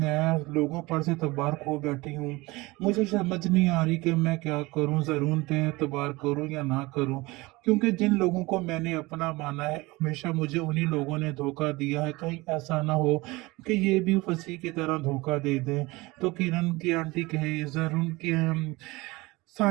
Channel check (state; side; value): quieter; left; 22.2 dB